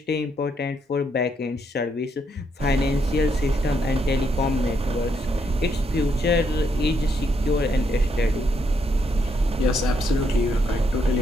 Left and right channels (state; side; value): normal; both; correlation 0.76